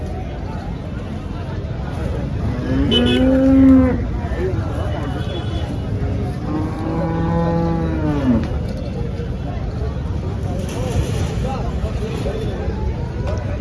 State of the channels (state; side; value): identical; both; correlation 1.00